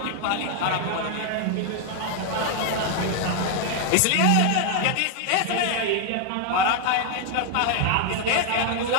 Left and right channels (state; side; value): different; both; correlation 0.00